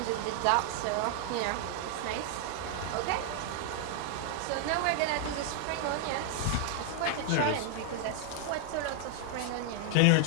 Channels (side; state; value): both; different; correlation 0.00